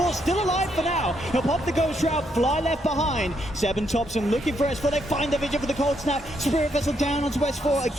still alive for now. He'll pop the ghost route. Fly left behind. Seb and Thompson looking for S4. They find the vision for the cold snap. Spirit Vessel down onto S4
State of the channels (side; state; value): both; normal; correlation 0.76